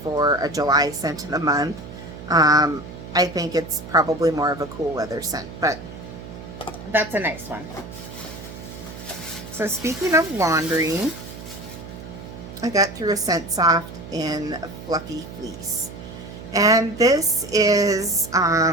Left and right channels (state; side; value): noise; right; hum, 13 dB below the sound